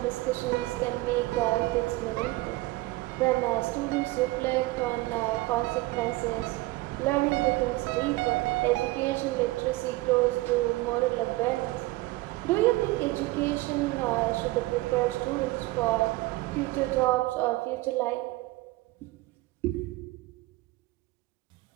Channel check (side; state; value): left; quieter; 20.1 dB